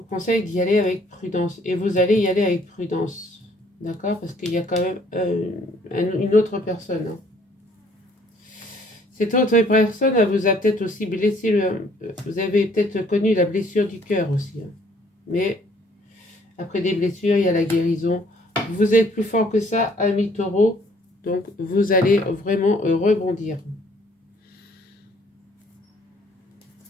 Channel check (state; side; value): normal; both; correlation 0.61